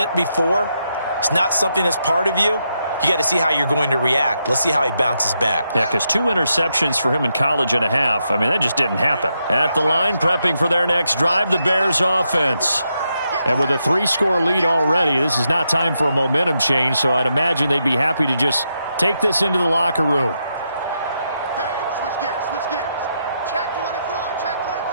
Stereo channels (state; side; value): inverted; both; correlation -0.82